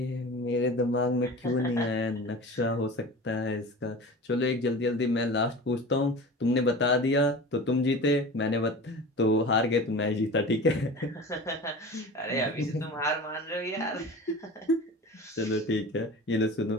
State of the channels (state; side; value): normal; both; correlation 0.35